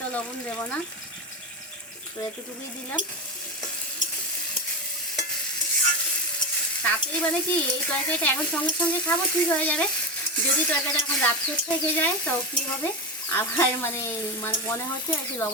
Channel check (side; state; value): both; normal; correlation 0.18